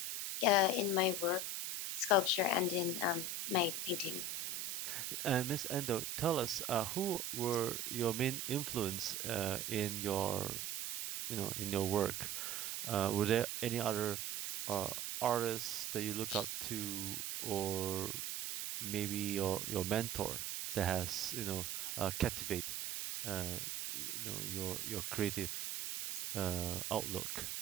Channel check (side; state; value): right; noise; hiss, 3 dB below the sound